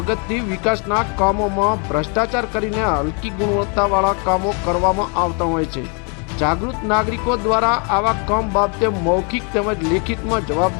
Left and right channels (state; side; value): quieter; right; 36.2 dB